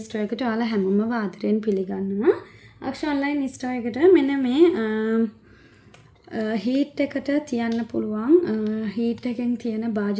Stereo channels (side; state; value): both; identical; correlation 1.00